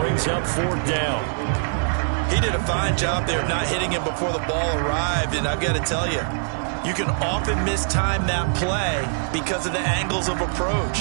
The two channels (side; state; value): left; silent; digital silence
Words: up 4th down. He did a fine job there of not hitting him before the ball arrived, and I've got to tell you, you can often mistime that play because of the angles of